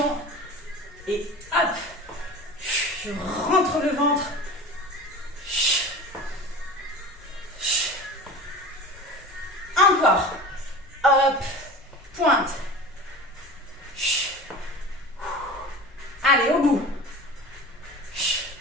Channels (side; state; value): both; normal; correlation 0.34